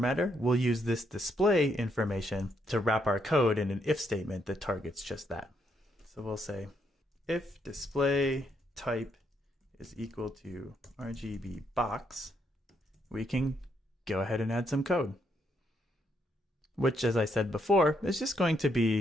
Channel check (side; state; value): both; normal; correlation 0.76